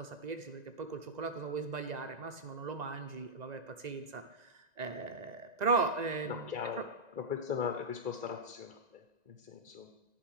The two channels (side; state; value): left; late; 1.9 ms